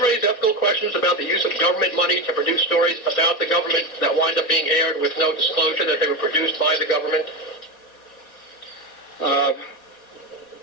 raise ethical questions about the use of government money to produce stories about the government that wind up being aired with no disclosure that they were produced by the government?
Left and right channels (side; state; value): right; late; 4.2 ms